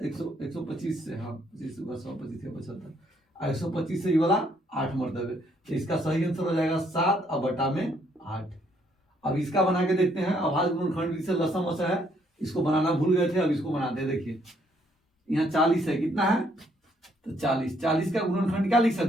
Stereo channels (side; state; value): both; normal; correlation 0.69